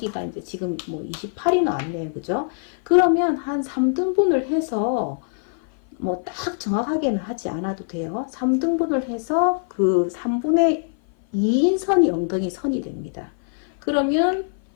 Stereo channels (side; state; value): right; silent; 55 dB below the other